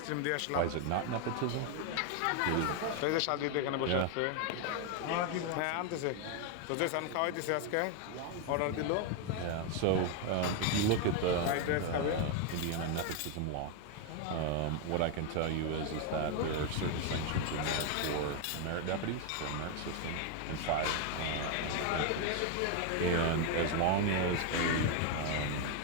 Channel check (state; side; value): different; both; correlation 0.01